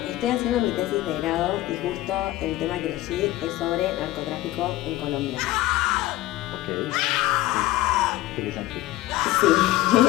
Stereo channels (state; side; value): quieter; right; 16.5 dB